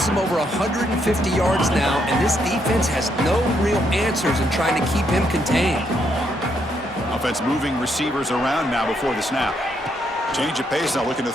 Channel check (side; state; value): both; normal; correlation 0.75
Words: him over 150 yards now, and this defense has no real answers in trying to keep him contained. Offense moving receivers around now before the snap. Change of pace now, looking to